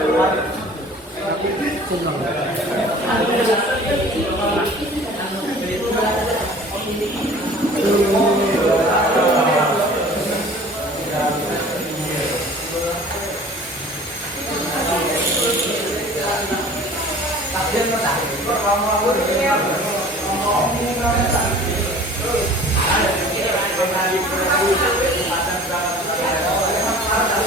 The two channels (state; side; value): normal; both; correlation 0.47